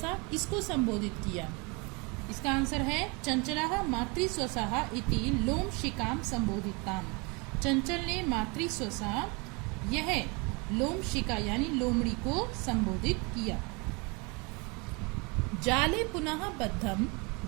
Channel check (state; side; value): quieter; left; 29.4 dB